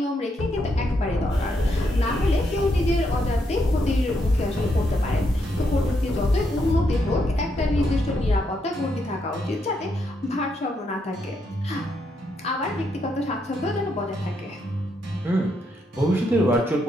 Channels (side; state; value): both; normal; correlation 0.78